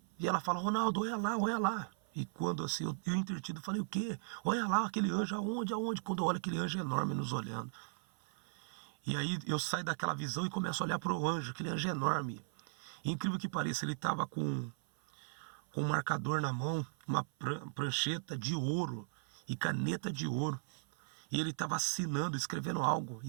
e ela fala, Ronaldo, olha lá, olha lá. E quando assim, eu entretido, falei, o quê? Olha lá, aquele anjo, aonde, aonde? Quando eu olho aquele anjo enorme nos olhando. E aí eu saio daquela visão e começo a olhar para o anjo, aquele anjo enorme. E incrível que pareça, ele estava com um marcador na mão, uma prancheta de ouro e caneta de ouro. E ele estava assinando, escrevendo algo.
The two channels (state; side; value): silent; left; 53 dB below the other